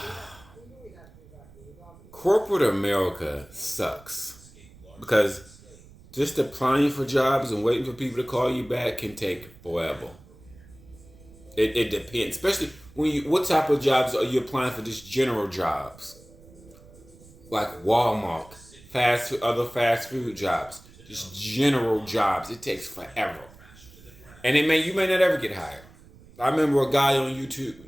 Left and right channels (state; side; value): noise; right; rumble, 23 dB below the sound